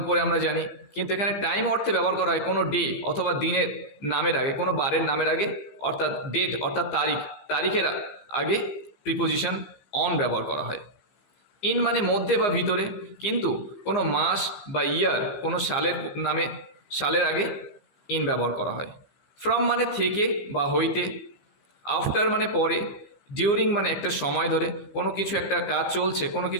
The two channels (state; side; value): late; right; 15 ms